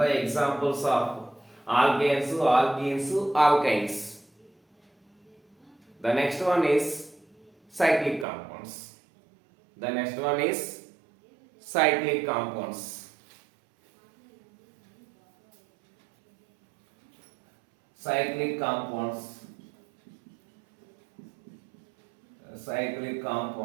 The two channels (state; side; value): drops out; left; at 8.2 s